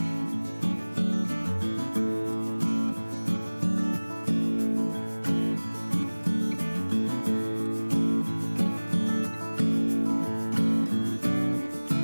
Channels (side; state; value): both; inverted; correlation -1.00